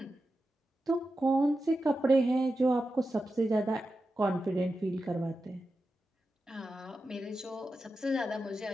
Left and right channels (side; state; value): both; normal; correlation 0.91